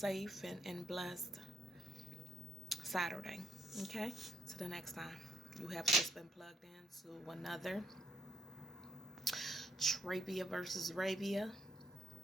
and blessed Saturday. Okay? Till the next time. You have just been plugged into another Trabia versus Rabia,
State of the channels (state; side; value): normal; both; correlation 0.73